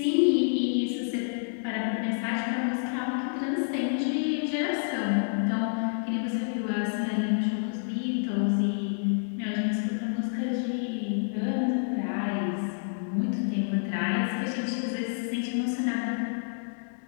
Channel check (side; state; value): right; silent; digital silence